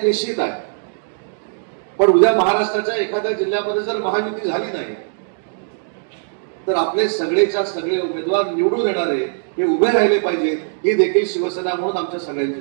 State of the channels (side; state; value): left; silent; digital silence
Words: निश्चित आहे, पण उद्या महाराष्ट्राच्या एखाद्या जिल्ह्यामध्ये जर महायुती झाली नाही तर आपले सगळेच्या सगळे उमेदवार निवडून येणारे हे उभे राहिले पाहिजेत, ही देखील शिवसेना म्हणून आमच्या सगळ्यांची